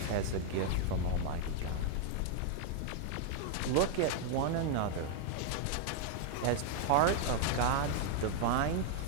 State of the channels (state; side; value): different; both; correlation 0.00